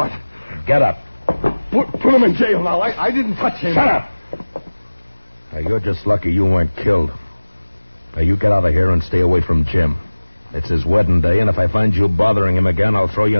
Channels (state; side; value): inverted; both; correlation -1.00